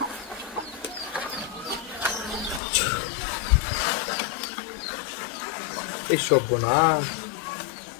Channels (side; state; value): right; drops out; at 2.6 s